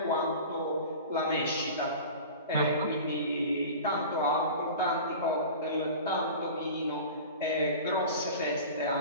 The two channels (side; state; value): both; inverted; correlation -0.36